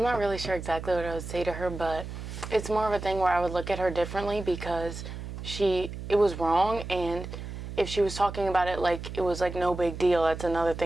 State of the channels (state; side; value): noise; right; hum, 9 dB below the sound